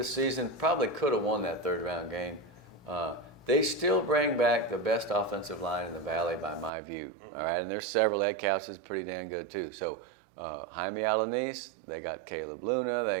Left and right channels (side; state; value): left; drops out; at 6.7 s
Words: season. Probably could have won that third round game. They still bring back the best offensive line in the Valley by my view. All right, and there's several. Ed Couch is pretty damn good too. So Jaime Alanis, they got Caleb Luna,